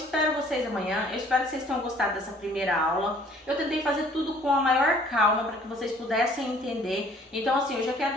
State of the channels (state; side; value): normal; both; correlation 0.56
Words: vocês amanhã, eu espero que vocês tenham gostado dessa primeira aula. Eu tentei fazer tudo com a maior calma para que vocês pudessem entender. Então, assim, eu já quero